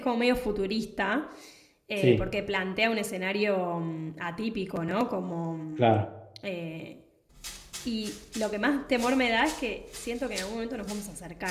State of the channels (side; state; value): both; identical; correlation 1.00